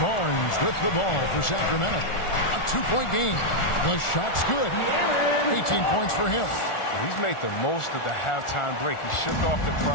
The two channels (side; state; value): right; late; 1.4 ms